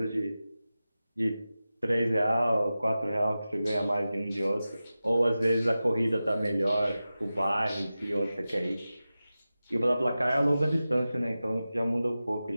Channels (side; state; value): both; inverted; correlation -0.94